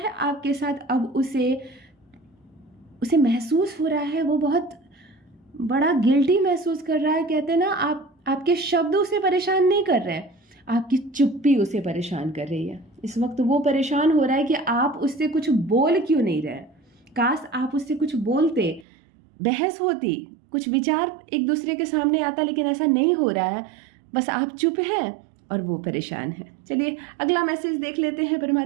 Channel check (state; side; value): drops out; left; at 18.9 s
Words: आपके साथ, अब उसे महसूस हो रहा है, वो बहुत बड़ा गिल्टी महसूस कर रहा है। कहते हैं ना, आपके शब्द उसे परेशान नहीं कर रहे हैं, आपकी चुप्पी उसे परेशान कर रही है। इस वक्त वो परेशान हो रहा है कि आप उससे कुछ बोल क्यों नहीं रहे। काश आप उससे कुछ बोलते, बहस होती, कुछ विचार एक दूसरे के सामने आता, लेकिन ऐसा नहीं हो रहा है। बस आप चुप हैं और वो परेशान है। चलिए अगला मैसेज देख लेते हैं,